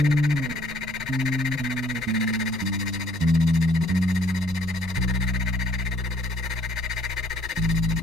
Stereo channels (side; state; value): both; normal; correlation 0.60